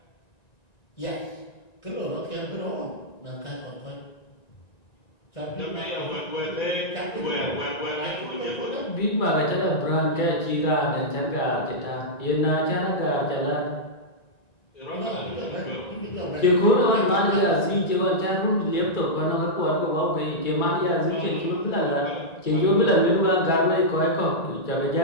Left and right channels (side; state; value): right; late; 1.9 ms